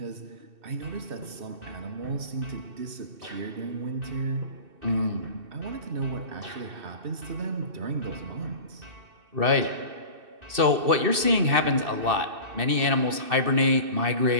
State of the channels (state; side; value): late; left; 2.6 ms